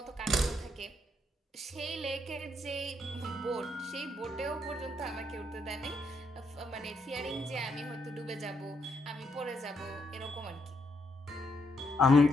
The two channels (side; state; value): both; normal; correlation 0.76